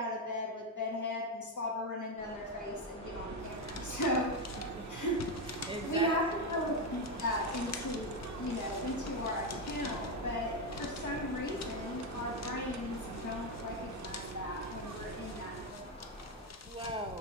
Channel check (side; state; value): both; normal; correlation 0.08